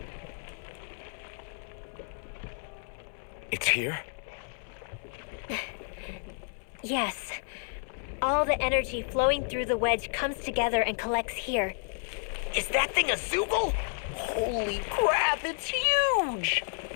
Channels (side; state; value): right; silent; 57 dB below the other